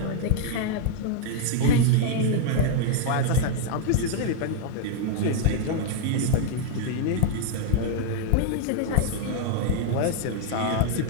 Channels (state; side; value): different; both; correlation 0.00